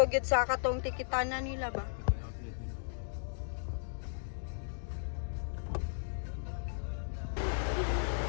gyud sa katong tikitanan nila ba?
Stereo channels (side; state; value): right; silent; digital silence